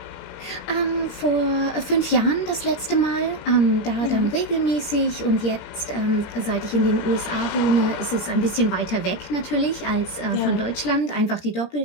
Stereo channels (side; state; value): right; late; 17 ms